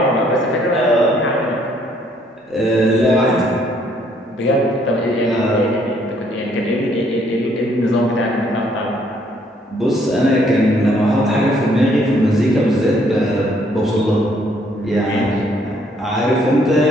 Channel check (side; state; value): both; normal; correlation 0.66